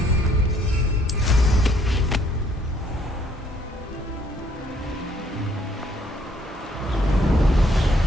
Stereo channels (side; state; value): both; normal; correlation 0.65